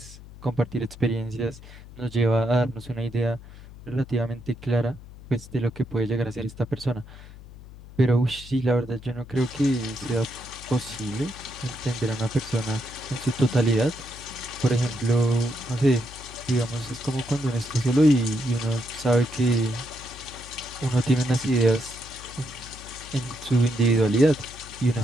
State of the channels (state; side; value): noise; left; hum, 17 dB below the sound